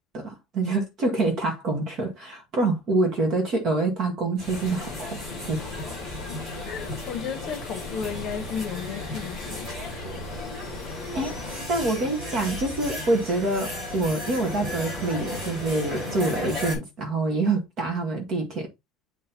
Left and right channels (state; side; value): normal; both; correlation 0.44